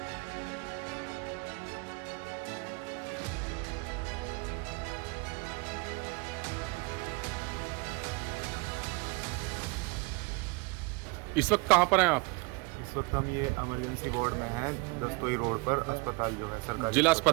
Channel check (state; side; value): quieter; left; 27.5 dB